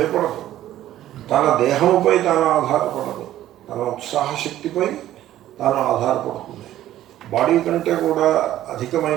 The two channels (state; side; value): quieter; left; 13.2 dB